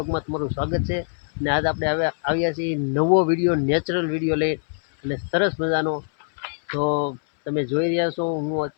તમારું સ્વાગત છે। અને આજ આપણે આવ્યા છીએ નવો વિડીયો, નેચરલ વિડીયો લઈ અને સરસ મજાનો। તો તમે જોઈ રહ્યા છો, હું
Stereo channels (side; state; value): right; silent; 63 dB below the other